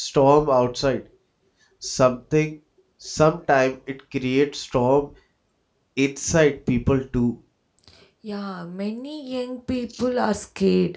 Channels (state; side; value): identical; both; correlation 1.00